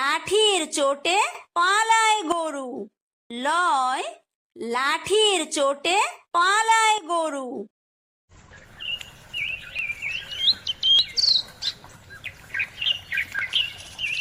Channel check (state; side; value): identical; both; correlation 1.00